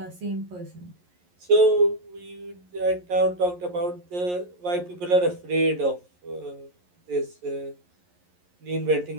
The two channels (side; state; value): left; late; 11 ms